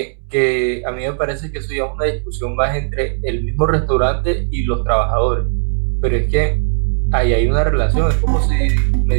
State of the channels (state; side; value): silent; left; digital silence